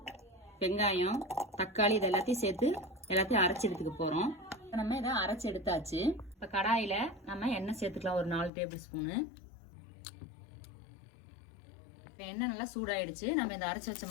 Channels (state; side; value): drops out; right; at 8.5 s